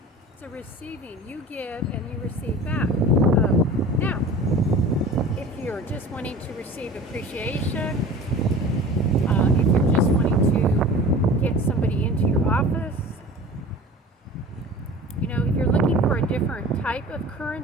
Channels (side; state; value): both; normal; correlation 0.40